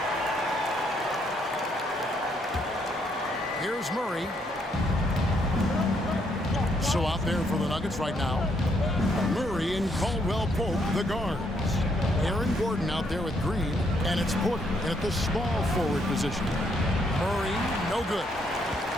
Here's Murray. So out there for the Nuggets right now, Murray and Caldwell Pope, the guards. Aaron Gordon out there with Green, and it's Porter at the small forward position. Murray, no good.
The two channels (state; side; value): normal; both; correlation 0.73